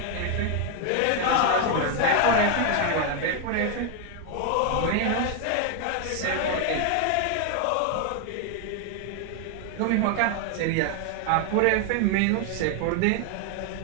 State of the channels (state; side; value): different; both; correlation 0.01